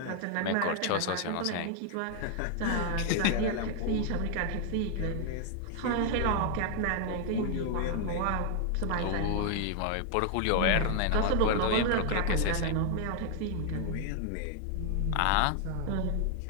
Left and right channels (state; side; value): different; both; correlation 0.00